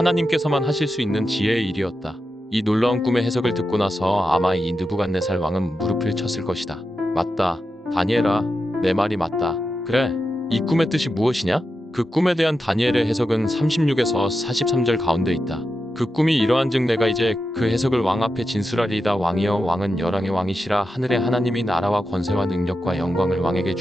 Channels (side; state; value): both; normal; correlation 0.89